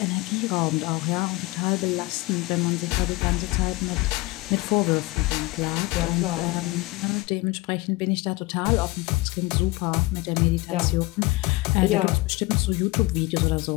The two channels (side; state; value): right; quieter; 22.2 dB